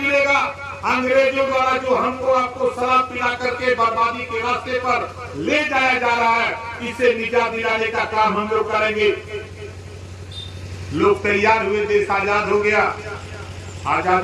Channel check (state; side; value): identical; both; correlation 1.00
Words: अंग्रेजों द्वारा जो हमको आपको शराब पिला करके बर्बादी के रास्ते पर ले जाया जा रहा है, इसे निजात दिलाने का काम हम लोग करेंगे। लोग तैयार हुए, देश आजाद हो गया।